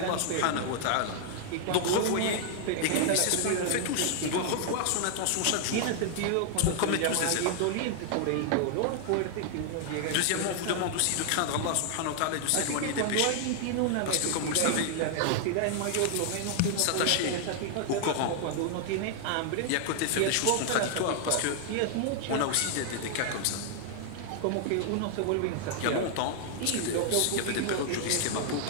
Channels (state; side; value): different; both; correlation 0.00